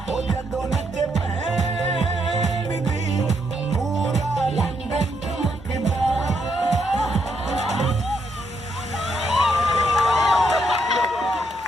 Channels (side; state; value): both; normal; correlation 0.77